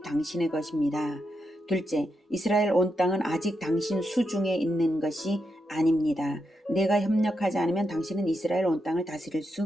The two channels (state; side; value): normal; both; correlation 0.84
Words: 당신의 것입니다. 둘째, 이스라엘 온 땅은 아직 당신 수중에 있는 것이 아닙니다. 내가 협력하지 않으면 당신은 이스라엘 온 땅을 다스릴